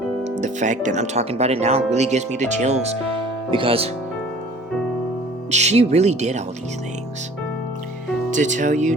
The fact that I'm talking about it now really gives me the chills because she really did all these things. To tell you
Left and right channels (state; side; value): normal; both; correlation 0.49